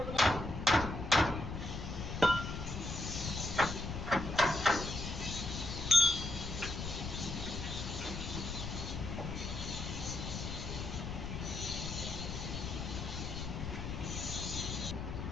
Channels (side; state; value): left; noise; rumble, 5 dB below the sound